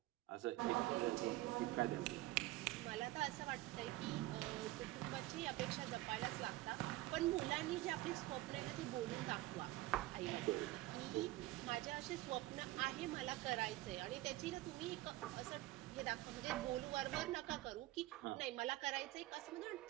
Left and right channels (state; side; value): quieter; left; 17.6 dB